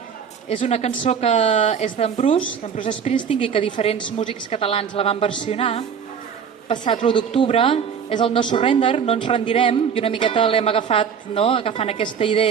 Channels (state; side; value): quieter; left; 7.2 dB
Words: És una cançó que és d'en Bruce Springsteen, i que diferents músics catalans la van versionar. Passat l'1 d'octubre, és el No Surrender, no ens rendirem, i una miqueta l'hem agafat, agafant aquesta